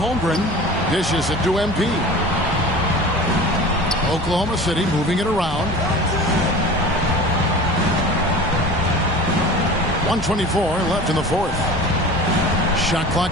Dishes it to MP. Oklahoma City moving it around. 1:24 left in the fourth. Shot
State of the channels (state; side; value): normal; both; correlation 0.38